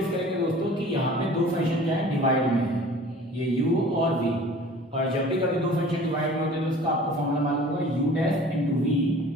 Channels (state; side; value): normal; both; correlation 0.46